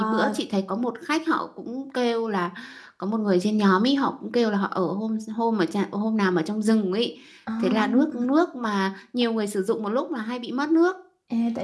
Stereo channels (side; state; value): both; identical; correlation 1.00